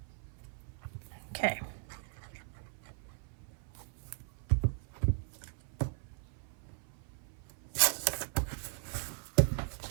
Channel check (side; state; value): left; silent; 53 dB below the other